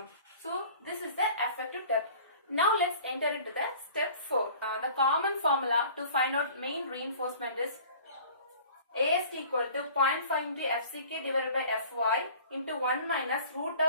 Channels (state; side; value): inverted; both; correlation -0.46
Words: So this is the effective depth. Now let's enter into the step 4. The common formula to find out main reinforcement is AST equal to 0.5 into FCK divided by FY into 1 minus root